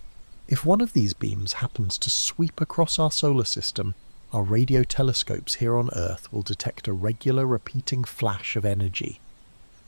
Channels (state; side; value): inverted; both; correlation -1.00